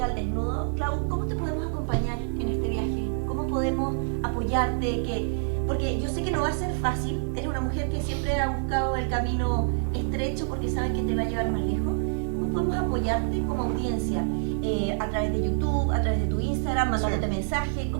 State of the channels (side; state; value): left; silent; digital silence